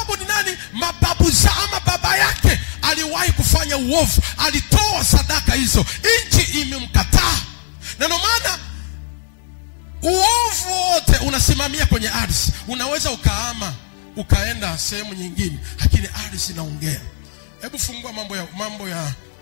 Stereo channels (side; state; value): right; silent; 64 dB below the other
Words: ni nani? Mababu za ama baba yake aliwahi kufanya uovu, alitoa sadaka hizo, nchi imemkataa. Na ndio maana uovu wote unasimamia kwenye ardhi. Unaweza ukahama ukaenda sehemu nyingine, lakini ardhi inaongea. Hebu fungua mambo